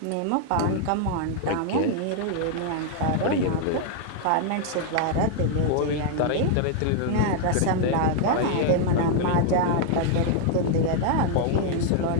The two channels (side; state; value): both; different; correlation 0.00